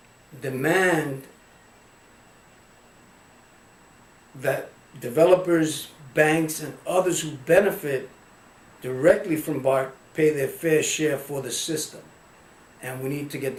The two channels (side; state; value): both; identical; correlation 1.00